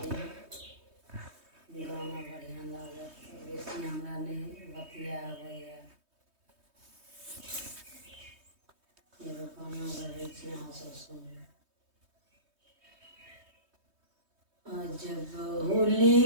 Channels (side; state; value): left; late; 3.2 ms